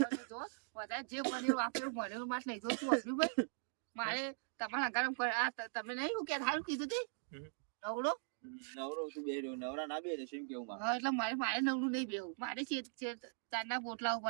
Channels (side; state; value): left; silent; digital silence